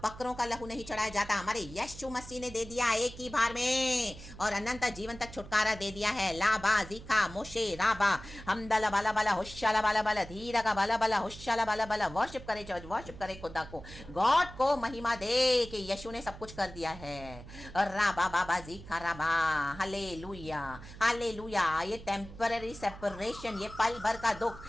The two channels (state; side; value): noise; right; hum, 15 dB below the sound